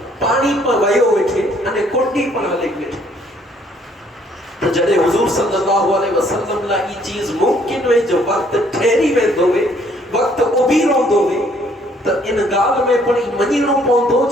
پانی پر ویو ویٹھے انہیں کنڈی پر ہلک ویٹھے. تو جڑے حضور صلی اللہ علیہ وسلم لا یہ چیز ممکن ہوئے جو وقت ٹھہری وے دوے وقت ابیروں دوے تو ان گال میں پڑی منیروں پوندو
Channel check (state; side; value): normal; both; correlation 0.64